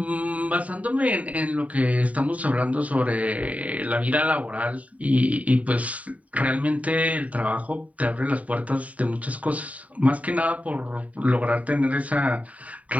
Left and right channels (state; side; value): late; left; 0.069 ms